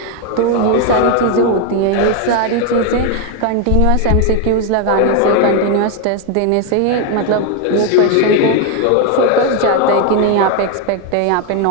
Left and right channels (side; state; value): both; different; correlation 0.01